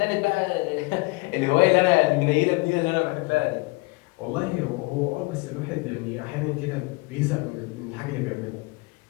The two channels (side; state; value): right; quieter; 25.5 dB